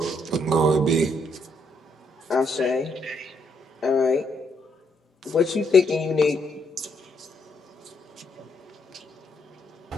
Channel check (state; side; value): normal; both; correlation 0.74